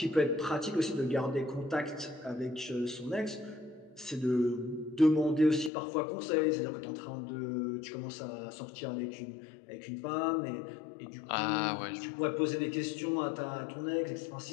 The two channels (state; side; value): drops out; right; at 5.7 s